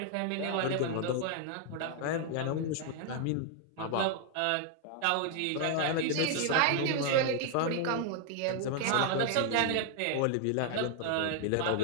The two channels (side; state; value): both; different; correlation 0.00